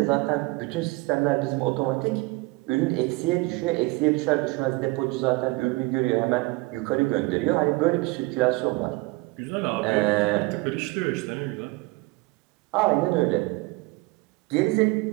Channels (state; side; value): quieter; left; 24.3 dB